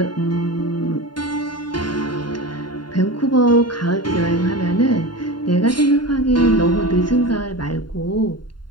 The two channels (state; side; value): late; right; 0.71 ms